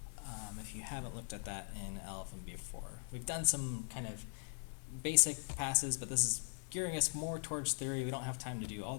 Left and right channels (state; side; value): silent; right; 51 dB below the other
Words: if you haven't looked at that in LLVM before. We've done some kind of basic passes, but this is gearing us more towards theory. We don't have time to do all